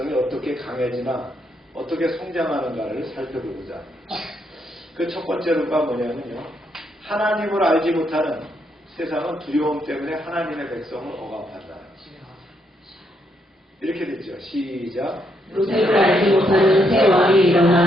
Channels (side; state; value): both; normal; correlation 0.76